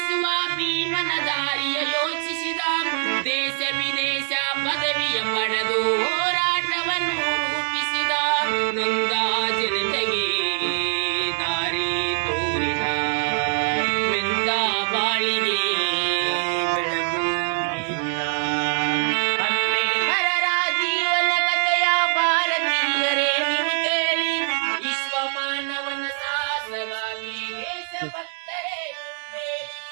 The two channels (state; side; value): silent; left; digital silence